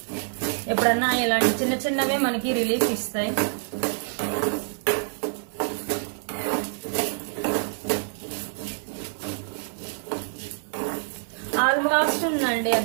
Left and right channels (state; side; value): silent; left; digital silence